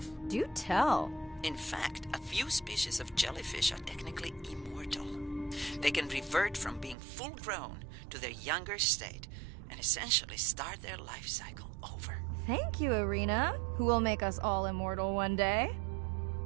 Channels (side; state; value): left; drops out; at 7.0 s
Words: Do tell. In fact, a few species of jellyfish are technically immortal. They can revert from being full-grown to their younger state and essentially start their life cycle over. Thank you, Arena, who will make us all immortal one day.